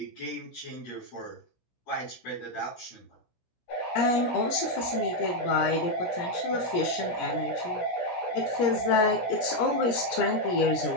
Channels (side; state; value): right; late; 17 ms